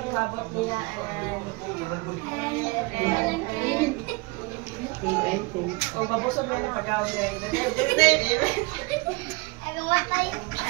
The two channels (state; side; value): quieter; left; 25.5 dB